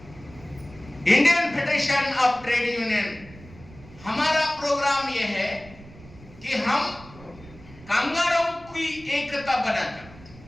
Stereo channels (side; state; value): right; noise; rumble, 20 dB below the sound